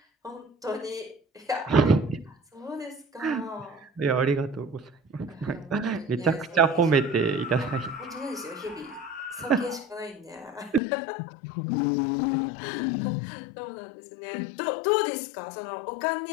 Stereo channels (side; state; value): right; drops out; at 10.8 s